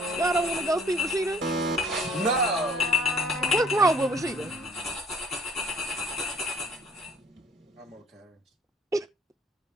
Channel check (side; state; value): both; normal; correlation 0.56